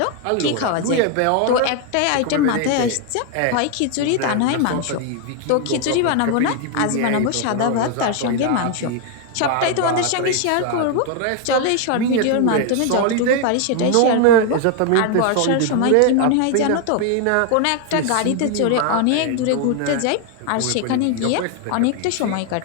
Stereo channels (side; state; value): both; different; correlation 0.01